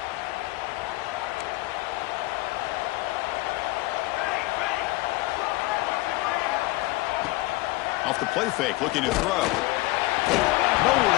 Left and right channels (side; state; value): right; quieter; 20.6 dB